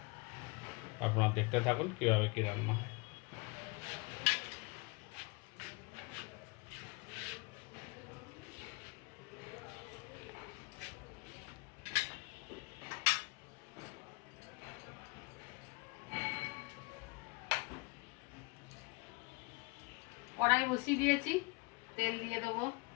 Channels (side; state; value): right; quieter; 27.3 dB